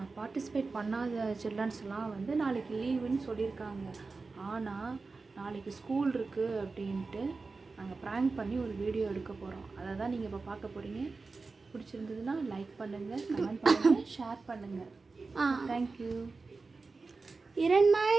பார்ட்டிசிபேட் பண்ணாத சில்ட்ரன்ஸ்லாம் வந்து நாளைக்கு லீவுன்னு சொல்லியிருக்காங்க. ஆனால் நாளைக்கு ஸ்கூல் இருக்குது அப்படின்ட்டு நாங்கள் ப்ராங்க் பண்ணி ஒரு வீடியோ எடுக்க போகிறோம். அதை தான் நீங்கள் இப்போ பார்க்க போகிறீங்க. பிடிச்சிருந்ததுன்னா லைக் பண்ணுங்கள், கமெண்ட் பண்ணுங்கள், ஷேர் பண்ணுங்கள். தேங்க்யூ. இரண்மை.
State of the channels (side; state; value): left; quieter; 4.0 dB